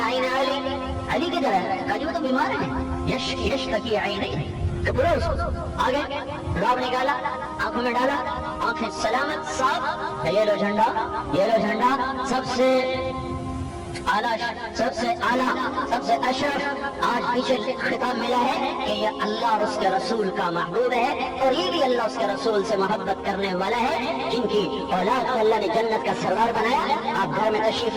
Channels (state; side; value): identical; both; correlation 1.00